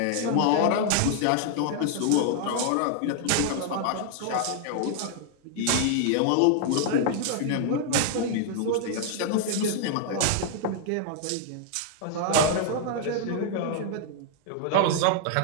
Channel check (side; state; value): both; different; correlation 0.00